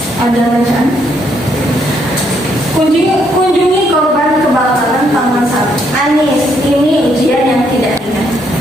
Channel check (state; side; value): normal; both; correlation 0.73